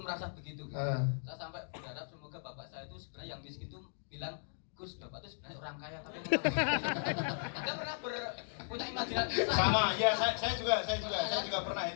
merasa begitu gitu. Saya sampai berharap semoga bapak saya itu sebenarnya yang miskin itu bilang, Gus, bapak itu sebenarnya orang kaya tapi Anda pernah punya imajinasi? Sama, ya saya juga pernah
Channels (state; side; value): silent; right; digital silence